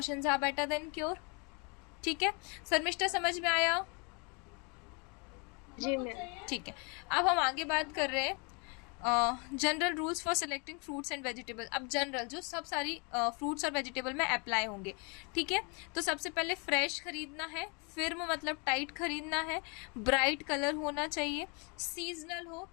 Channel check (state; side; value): quieter; right; 33.4 dB